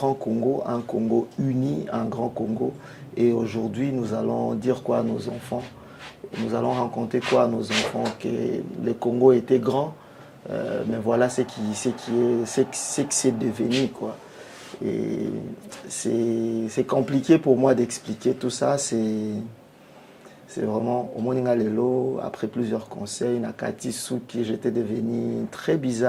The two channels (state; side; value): identical; both; correlation 1.00